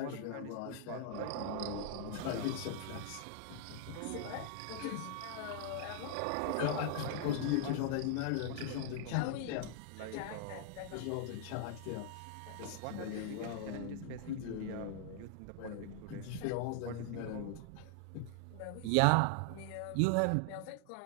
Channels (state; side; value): different; both; correlation -0.01